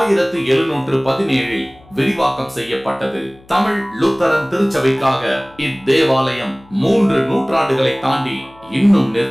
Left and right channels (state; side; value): noise; left; hum, 27 dB below the sound